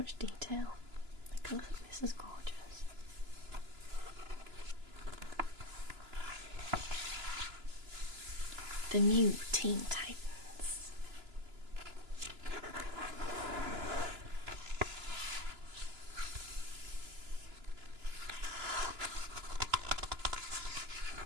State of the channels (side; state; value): left; late; 2.9 ms